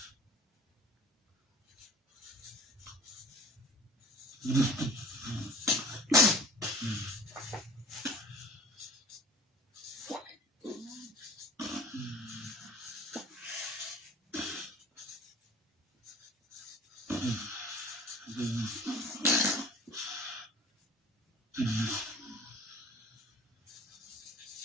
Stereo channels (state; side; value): normal; both; correlation 0.44